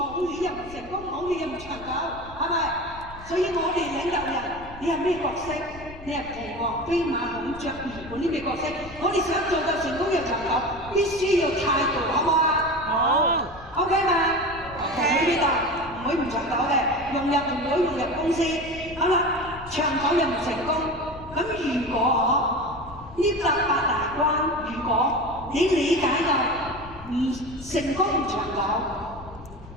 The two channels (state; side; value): noise; left; rumble, 17 dB below the sound